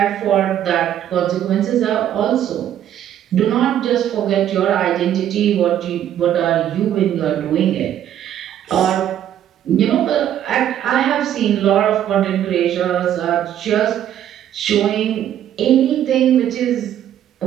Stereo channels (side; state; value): left; quieter; 10.8 dB